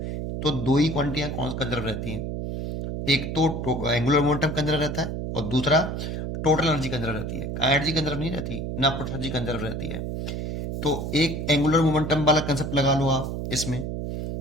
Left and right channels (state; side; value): noise; right; hum, 4 dB below the sound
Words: तो दो ही क्वांटिटियां कंजर्व रहती हैं, एक तो एंगुलर मोमेंटम कंजर्व रहता है और दूसरा टोटल एनर्जी कंजर्व रहती है। एनर्जी कंजर्व नहीं रहती, ना टोटल एनर्जी कंजर्व रहती है। तो एक एंगुलर मोमेंटम वाला कंसेप्ट लगा लो आप, इसमें